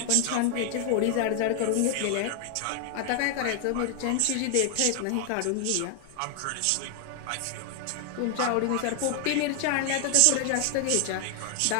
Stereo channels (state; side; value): different; both; correlation 0.00